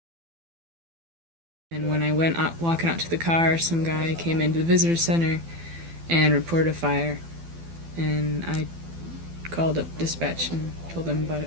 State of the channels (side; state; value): left; late; 12 ms